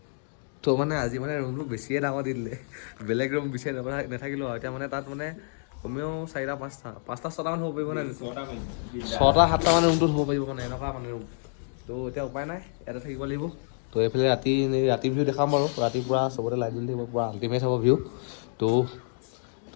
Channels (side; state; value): right; silent; digital silence